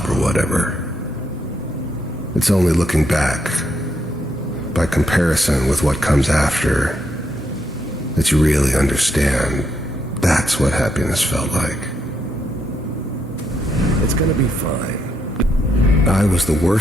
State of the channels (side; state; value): both; normal; correlation 0.77